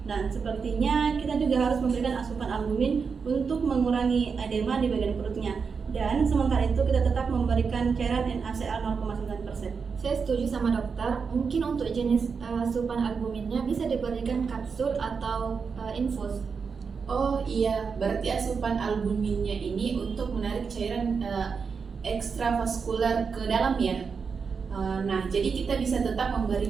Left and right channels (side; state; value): left; quieter; 5.6 dB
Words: Dan sepertinya kita juga harus memberikan asupan albumin untuk mengurangi edema di bagian perutnya. Dan sementara itu kita tetap memberikan cairan NaCl 0,9%. Saya setuju sama dokter. Mungkin untuk jenis asupan albuminnya bisa diberikan kapsul atau infus. Oh iya, berarti asupan albuminnya ini untuk menarik cairan ekstravaskular ke dalam ya. Nah, jadi kita bisa tetap